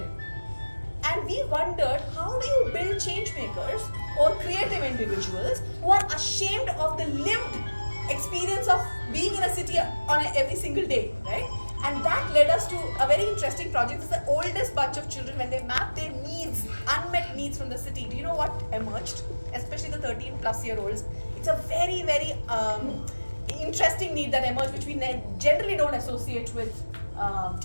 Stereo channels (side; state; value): both; inverted; correlation -1.00